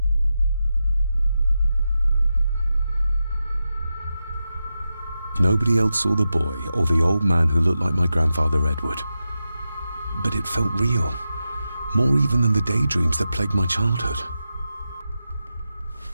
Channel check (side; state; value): both; inverted; correlation -0.90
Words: Nobody else saw the boy or the old man who looked like my grandfather Edward. But it felt real, more even than the daydreams that plagued my childhood.